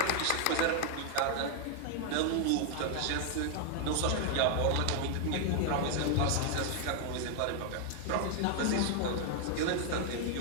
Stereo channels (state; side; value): different; both; correlation 0.00